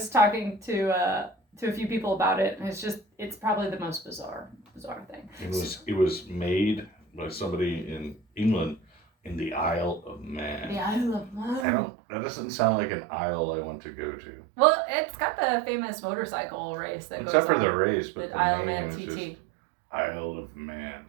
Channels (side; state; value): left; drops out; at 11.7 s